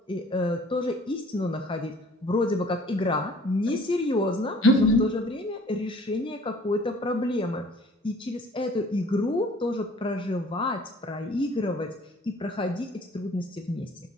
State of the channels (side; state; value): both; normal; correlation 0.53